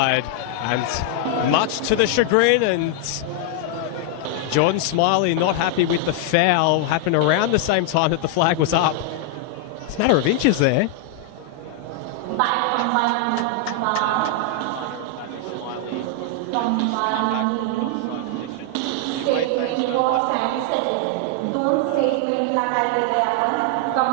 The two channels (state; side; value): different; both; correlation 0.00